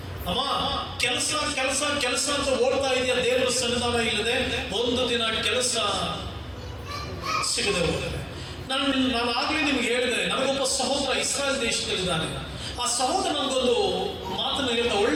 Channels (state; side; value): identical; both; correlation 1.00